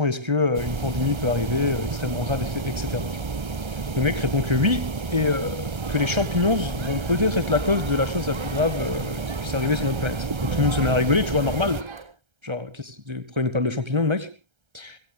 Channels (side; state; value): left; late; 1.3 ms